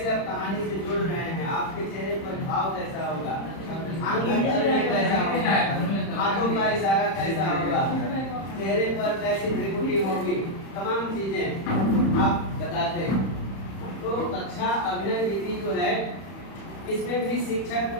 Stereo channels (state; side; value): late; right; 31 ms